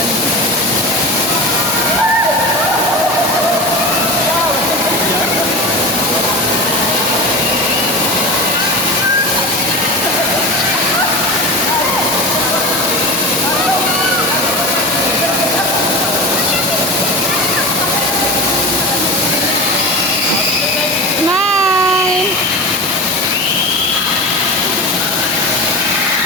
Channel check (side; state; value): both; normal; correlation 0.27